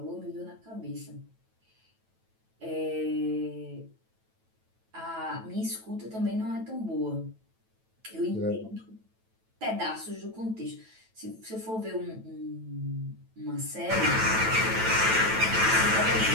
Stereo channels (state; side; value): late; left; 9.1 ms